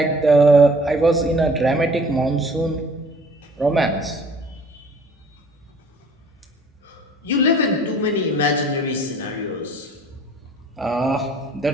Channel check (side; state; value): both; normal; correlation 0.52